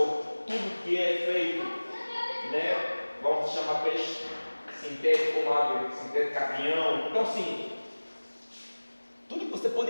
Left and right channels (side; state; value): both; inverted; correlation -1.00